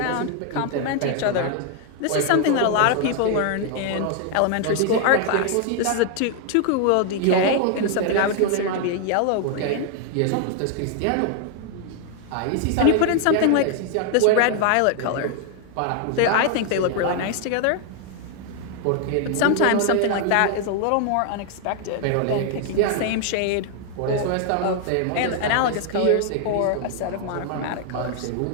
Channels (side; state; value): both; different; correlation 0.00